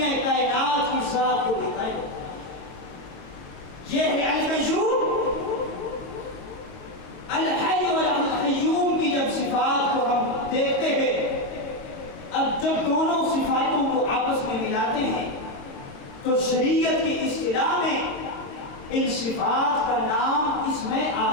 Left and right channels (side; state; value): right; late; 22 ms